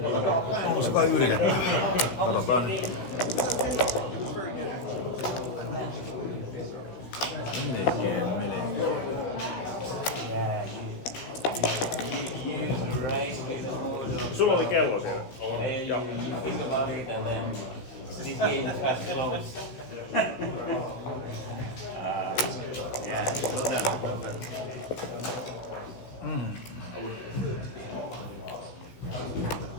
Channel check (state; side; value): late; right; 16 ms